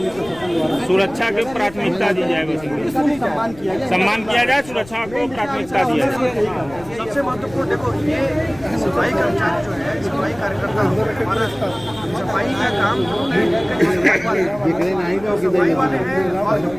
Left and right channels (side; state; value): left; noise; rumble, 19 dB below the sound